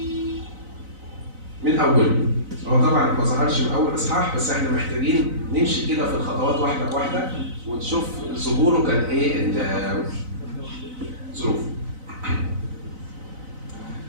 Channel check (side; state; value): left; late; 4.0 ms